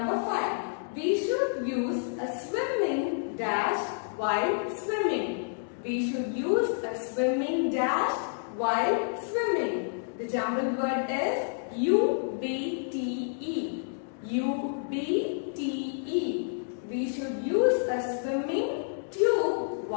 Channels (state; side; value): silent; right; digital silence